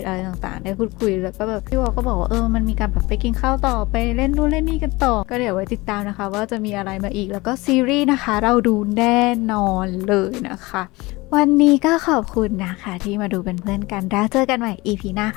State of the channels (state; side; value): quieter; right; 22.3 dB